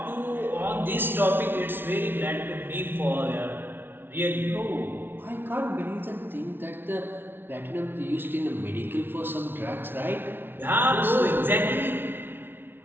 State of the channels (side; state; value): left; late; 0.10 ms